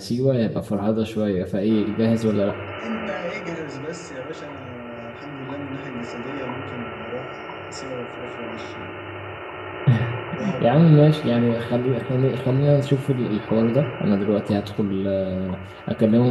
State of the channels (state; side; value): identical; both; correlation 1.00